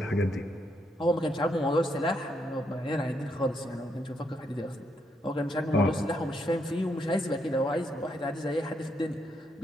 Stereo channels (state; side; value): normal; both; correlation 0.77